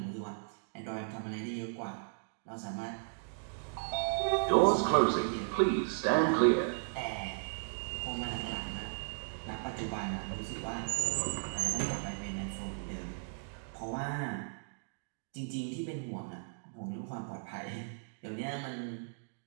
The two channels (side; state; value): left; silent; digital silence